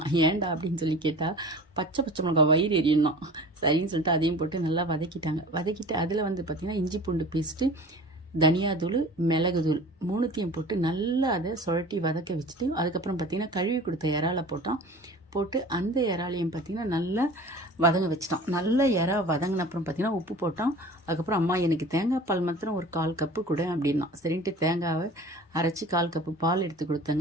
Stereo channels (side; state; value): both; normal; correlation 0.41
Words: ஏன்டா அப்படின்னு சொல்லி கேட்டால் பச்சை மிளகாய் வயிறு எரியணும் சரின்னு சொல்லிட்டு அதையும் போட்டு நல்லா வதக்கிட்டாங்க. வதக்கிட்டு அதில் வந்து பார்த்திங்கன்னா இஞ்சி பூண்டு பேஸ்ட்டு, தனியாத்தூள், மிளகுத்தூள் மூணுத்தையும் போட்டு நல்லா அதை சுழட்டி வதக்க வச்சுட்டு அதுக்கப்புறம் பார்த்திங்கன்னா கழுவி கொடுத்த இறாலை போட்டு அந்த இறாலையும் பார்த்திங்கன்னா நல்லா வதங்க வச்சிட்டான். நல்லா இறா வதங்கின அப்புறம் பார்த்திங்கன்னா உப்பு போட்டான். அதுக்கப்புறம் அம்மா எனக்கு தேங்காய் பால் மாத்திரம் ஒரு 1/4 கப்பு கொடு அப்படின்னா சரின்ட்டு தேங்காவை அரைச்சி 1/4 கப்பு பால் எடுத்து